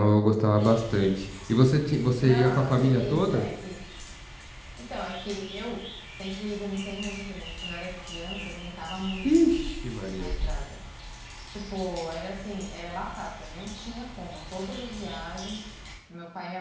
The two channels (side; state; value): both; identical; correlation 1.00